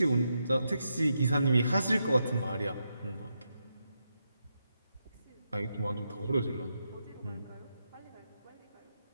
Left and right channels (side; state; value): both; inverted; correlation -0.84